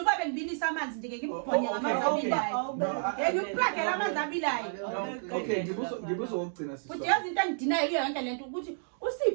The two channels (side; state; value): left; silent; digital silence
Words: kwabe ngibilisa amanzi nje ngibubhonye ngamanzi abilayo ngikuplagela amanzi abilayo okay ngibuza ukugcina sis futhi yazi into engidinayo iyo yonke lento ukuthi